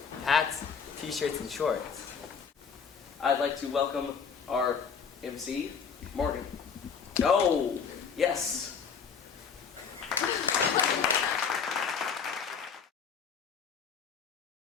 hats, t-shirts, and shorts. I'd like to welcome our MC, Morgan. Oh, yes.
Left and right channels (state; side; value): quieter; right; 6.4 dB